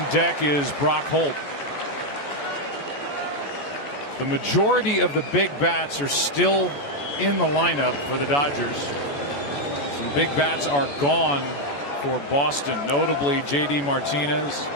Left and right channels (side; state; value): right; late; 14 ms